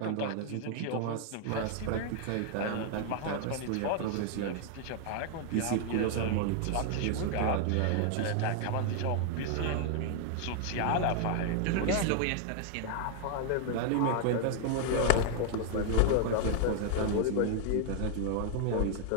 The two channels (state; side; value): different; both; correlation 0.00